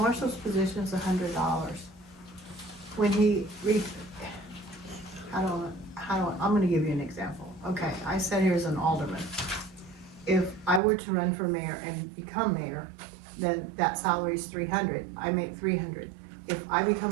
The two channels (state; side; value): drops out; left; at 10.8 s